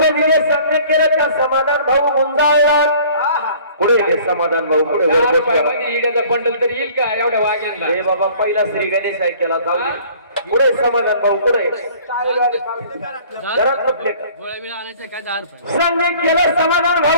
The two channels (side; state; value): both; inverted; correlation -0.52